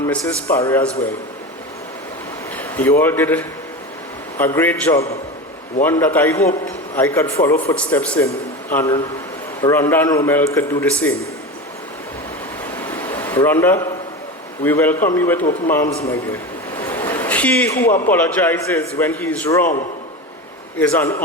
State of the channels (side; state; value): both; normal; correlation 0.25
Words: Mrs. Parry as well. You all did a great job, one that I hope I could follow footsteps in, and Rhonda and Romel could do the same. Rhonda, we welcome you with open arms, my dear. He who apologizes when he is wrong is an